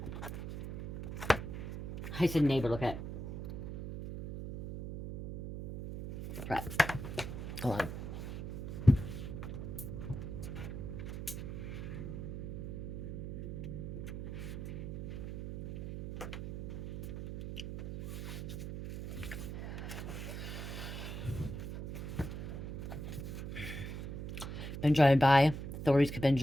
I said neighbor, look at it. Right. Hold on. been driving by. Authorities could have been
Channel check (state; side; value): noise; right; hum, 6 dB below the sound